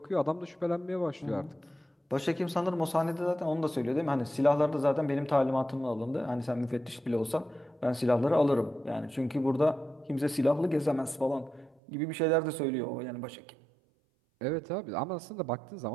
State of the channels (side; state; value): left; drops out; at 11.8 s